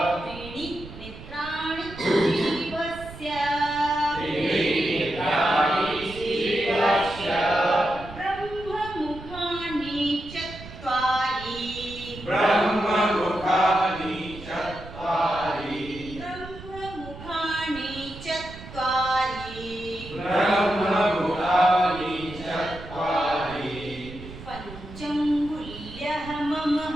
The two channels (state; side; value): noise; right; rumble, 14 dB below the sound